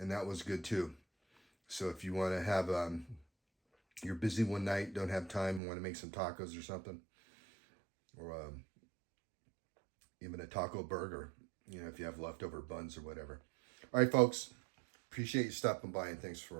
that was good too. So if you want to have, you're busy one night, don't have time, want to make some tacos or something, or even a taco burger, you know, if you have leftover buns or whatever. All right, folks, appreciate you stopping by, and thanks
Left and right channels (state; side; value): drops out; left; at 5.6 s